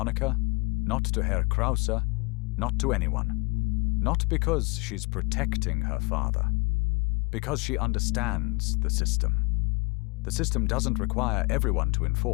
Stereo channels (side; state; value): right; quieter; 26.9 dB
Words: Not to Herr Krause. Not to anyone. Not because she's protecting her father. Because she understands the system. The system doesn't require everyone to